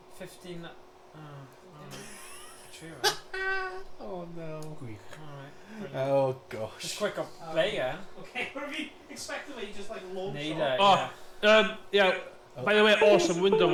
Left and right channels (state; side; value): identical; both; correlation 1.00